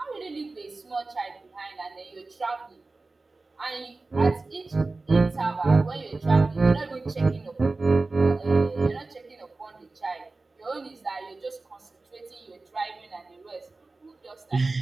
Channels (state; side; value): quieter; left; 3.5 dB